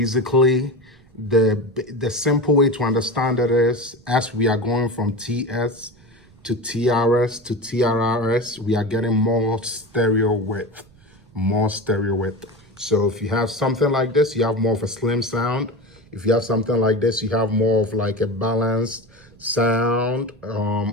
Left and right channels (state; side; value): noise; right; rumble, 28 dB below the sound